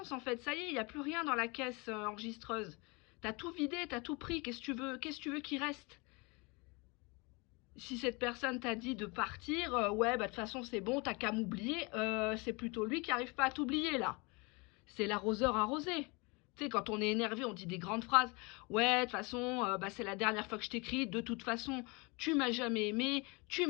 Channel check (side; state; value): right; quieter; 28.1 dB